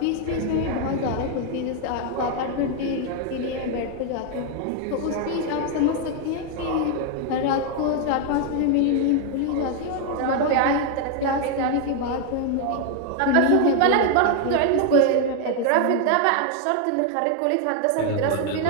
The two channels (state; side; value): different; both; correlation 0.00